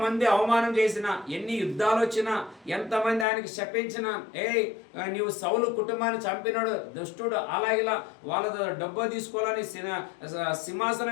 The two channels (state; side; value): drops out; right; at 3.2 s